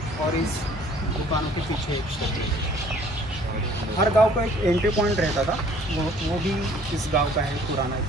और इस दुकानों के पीछे एक स्टेप वेल है. हर गांव का एक एंट्री पॉइंट रहता था, वो भी इस गांव का है, पुराना,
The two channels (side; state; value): both; normal; correlation 0.56